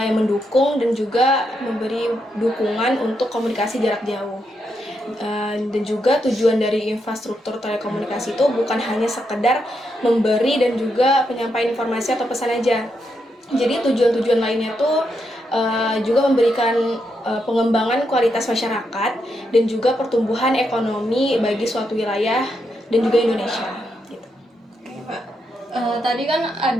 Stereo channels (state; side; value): normal; both; correlation 0.82